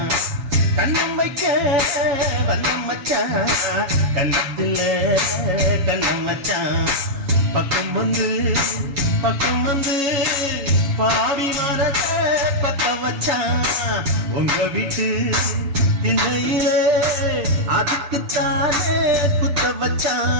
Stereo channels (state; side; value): late; left; 7.2 ms